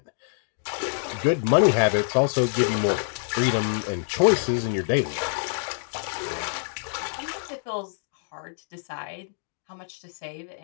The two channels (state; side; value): silent; right; digital silence